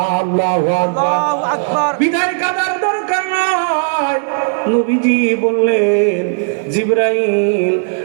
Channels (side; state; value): left; silent; digital silence